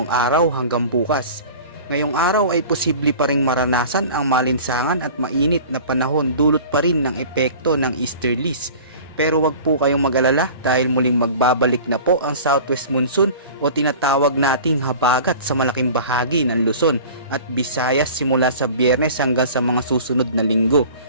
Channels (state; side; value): inverted; both; correlation -0.41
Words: araw hanggang bukas. Ngayong araw ay posible pa ring maranasan ang malinsangan at mainit na panahon dulot pa rin ng epekto ng easterlies. Pero wag po kayong mag-alala dahil muling magbabalik na po ang southwest monsoon o tinatawag nating habagat sa malaking bahagi ng Luzon at Visayas simula sa Biyernes hanggang sa mga susunod na linggo.